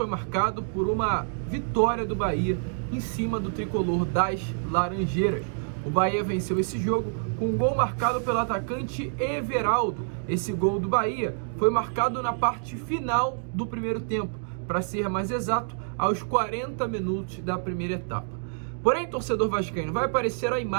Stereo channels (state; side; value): silent; left; digital silence